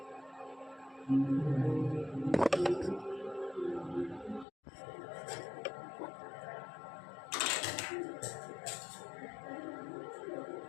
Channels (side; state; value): right; drops out; at 4.5 s